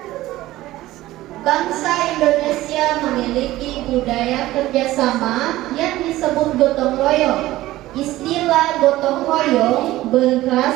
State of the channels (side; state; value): left; quieter; 16.4 dB